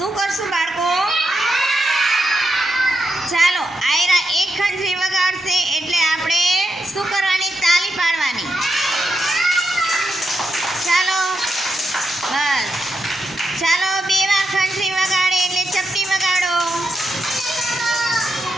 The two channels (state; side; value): normal; both; correlation 0.84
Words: કરશું બાળકો? ચાલો, આયરા એક ખંજરી વગાડશે એટલે આપણે શું કરવાની? તાલી પાડવાની. ચાલો, બસ. ચાલો, 2 વાર ખંજરી વગાડે એટલે ચપટી વગાડો.